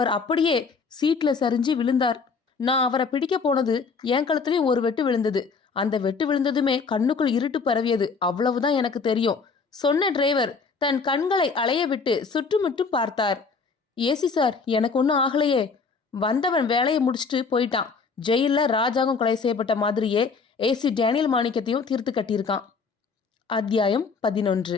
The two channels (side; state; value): right; quieter; 5.0 dB